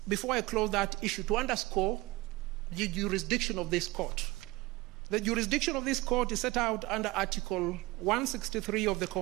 before I close that issue, to underscore the jurisdiction of this court. The jurisdiction of this court is set out under Article 163 of the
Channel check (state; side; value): quieter; left; 21.1 dB